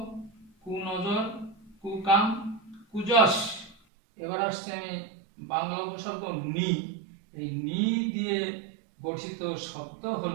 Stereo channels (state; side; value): drops out; left; at 3.8 s